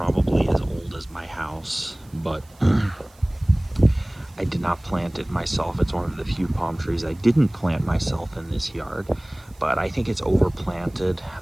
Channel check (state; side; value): noise; right; hiss, 29 dB below the sound